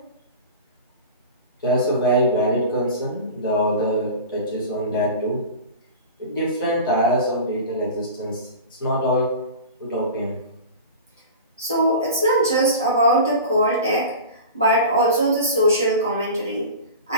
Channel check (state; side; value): inverted; both; correlation -0.33